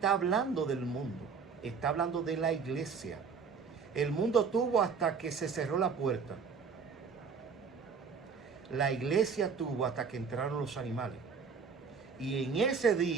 hablando del mundo, está hablando de la iglesia. El mundo tuvo hasta que se cerró la puerta. La iglesia tuvo hasta que entraron los animales. Y en ese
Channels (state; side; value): quieter; left; 5.7 dB